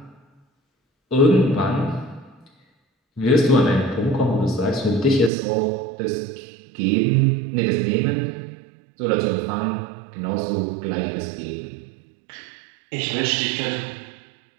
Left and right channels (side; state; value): left; drops out; at 5.3 s